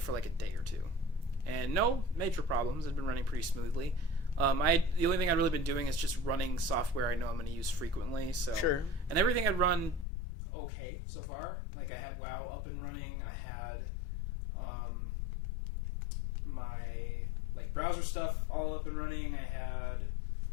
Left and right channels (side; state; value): right; drops out; at 10.1 s